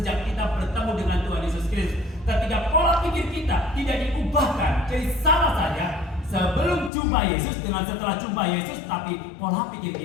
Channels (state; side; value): drops out; right; at 6.9 s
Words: kita bertemu dengan Tuhan Yesus Kristus. Ketika pola pikir kita tidak diubahkan, jadi sama saja sebelum jumpa Yesus dengan setelah jumpa Yesus, tapi pola pikir